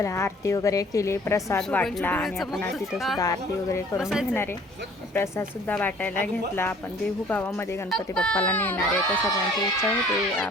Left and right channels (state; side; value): normal; both; correlation 0.54